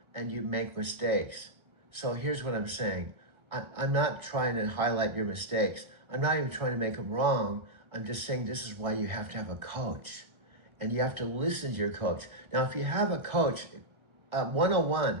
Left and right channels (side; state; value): left; late; 1.3 ms